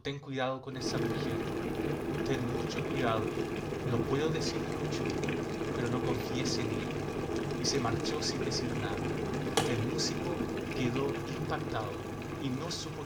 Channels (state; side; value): identical; both; correlation 1.00